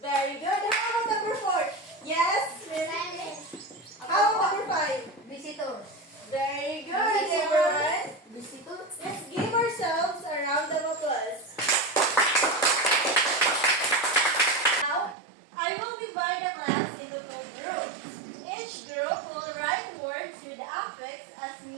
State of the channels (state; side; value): drops out; left; at 15.2 s